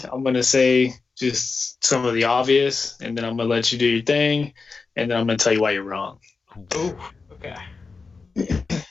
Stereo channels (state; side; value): quieter; right; 4.4 dB